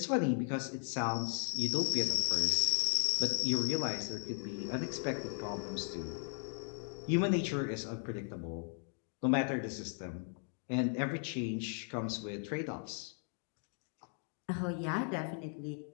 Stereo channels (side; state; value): right; silent; 53 dB below the other